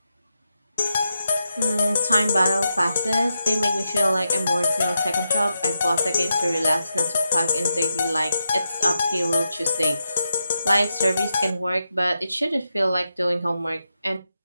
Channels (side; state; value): both; inverted; correlation -0.86